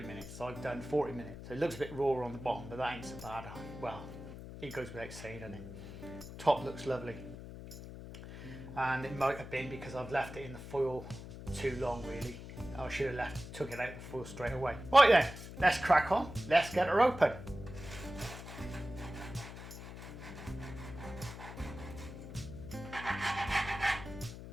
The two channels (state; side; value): noise; left; hum, 12 dB below the sound